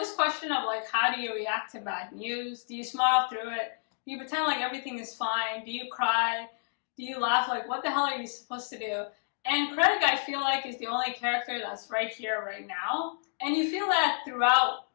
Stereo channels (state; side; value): silent; right; digital silence